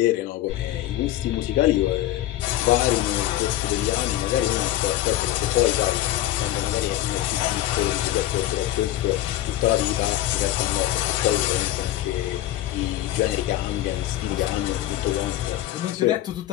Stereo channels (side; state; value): right; quieter; 14.4 dB